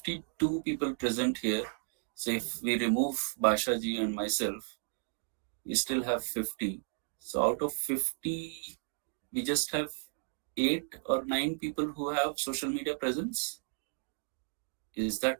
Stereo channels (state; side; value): silent; left; digital silence